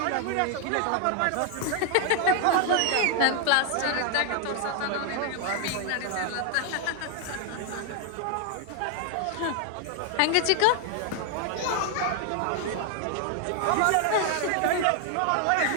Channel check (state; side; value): different; both; correlation 0.00